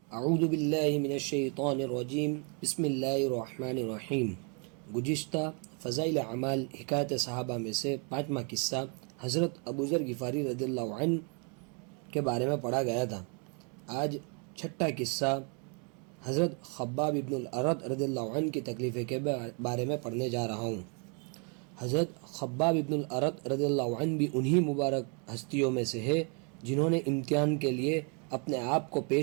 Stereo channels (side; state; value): left; quieter; 36.8 dB